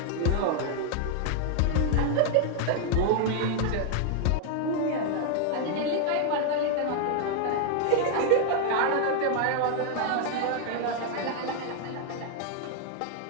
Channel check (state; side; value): different; both; correlation 0.00